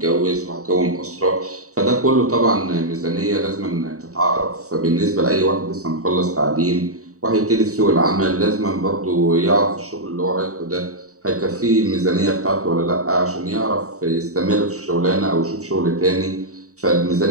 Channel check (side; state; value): left; late; 0.65 ms